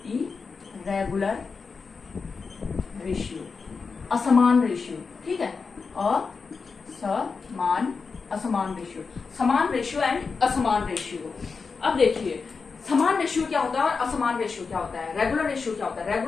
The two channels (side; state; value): right; quieter; 4.9 dB